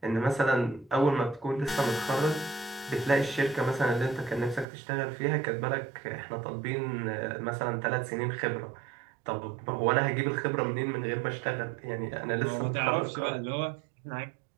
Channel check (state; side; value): drops out; left; at 4.7 s